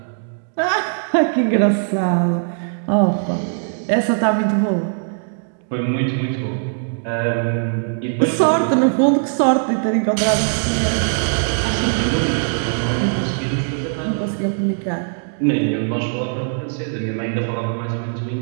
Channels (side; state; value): left; silent; digital silence